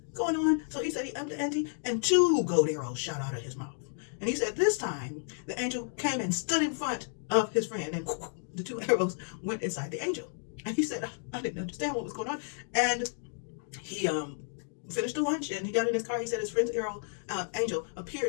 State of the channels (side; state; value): right; silent; 57 dB below the other